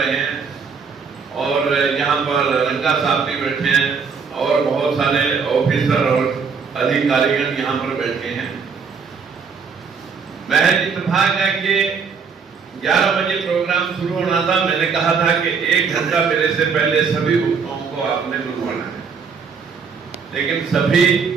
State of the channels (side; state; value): left; quieter; 5.8 dB